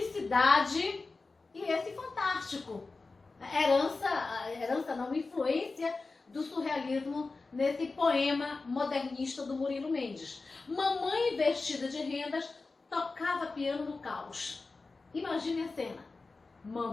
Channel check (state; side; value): quieter; right; 3.8 dB